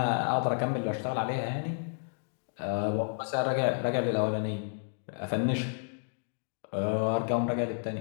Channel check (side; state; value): right; silent; digital silence